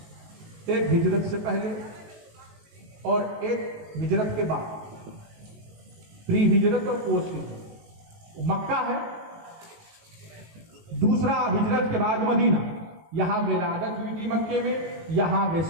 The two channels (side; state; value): left; late; 19 ms